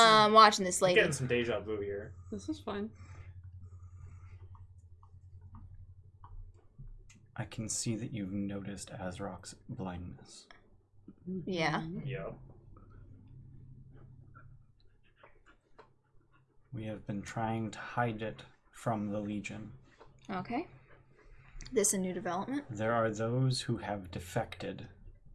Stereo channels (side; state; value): both; identical; correlation 1.00